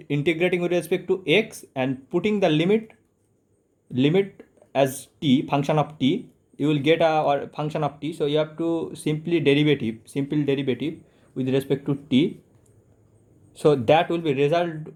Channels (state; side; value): identical; both; correlation 1.00